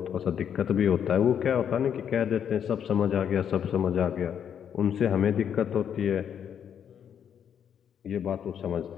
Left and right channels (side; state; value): right; quieter; 8.5 dB